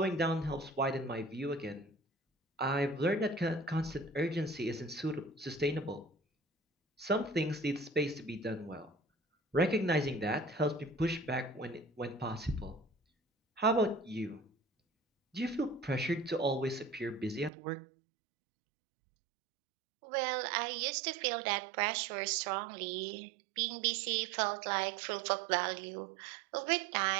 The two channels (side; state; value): left; drops out; at 17.5 s